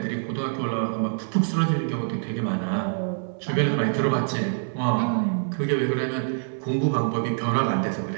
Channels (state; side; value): silent; left; digital silence